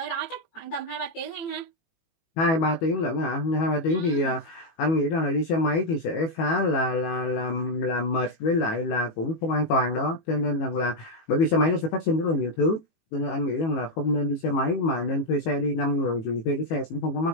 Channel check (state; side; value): late; right; 18 ms